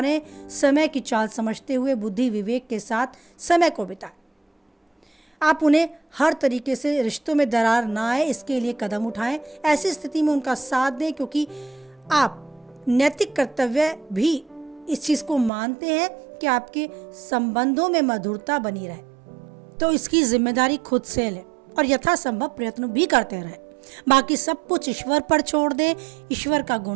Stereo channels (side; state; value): left; drops out; at 15.5 s